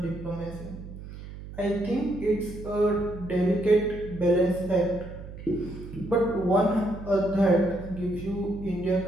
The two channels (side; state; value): right; noise; hum, 13 dB below the sound